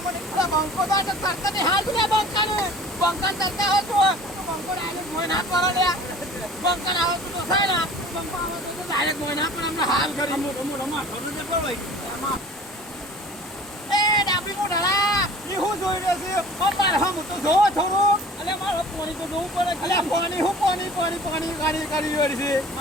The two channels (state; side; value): normal; both; correlation 0.45